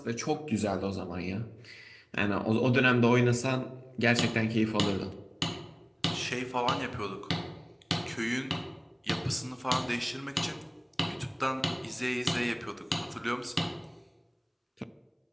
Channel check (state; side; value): identical; both; correlation 1.00